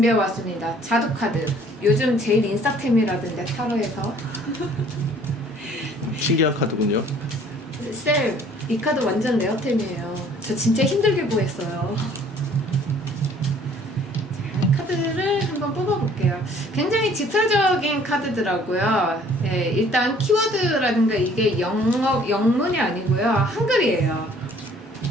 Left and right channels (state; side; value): normal; both; correlation 0.56